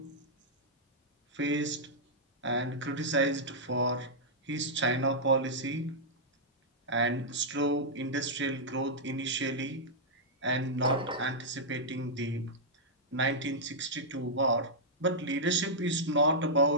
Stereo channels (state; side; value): normal; both; correlation -0.09